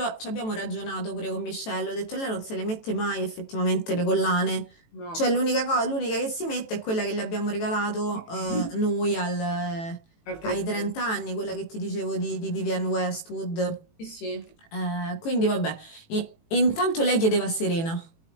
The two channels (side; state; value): right; late; 18 ms